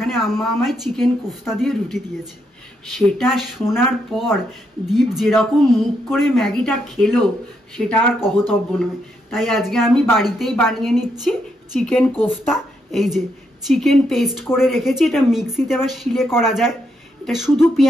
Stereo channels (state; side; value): normal; both; correlation 0.78